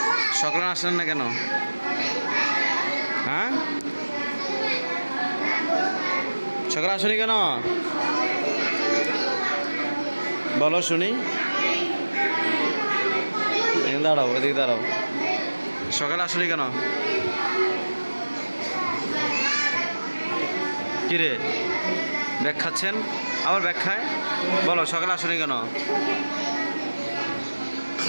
সকালে আসলেন না কেন? হ্যাঁ, সকালে আসনি কেন? বলো শুনি। দাঁড়াও, এদিকে দাঁড়াও। সকালে আসনি কেন? কিরে ব্যাগ খাচ্ছেন? আবার ব্যাগ খায়? বলো সকালে আসনি কেন?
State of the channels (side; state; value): both; inverted; correlation -1.00